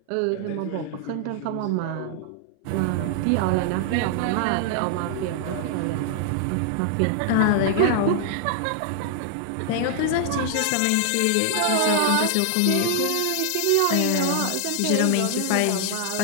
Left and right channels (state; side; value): different; both; correlation 0.00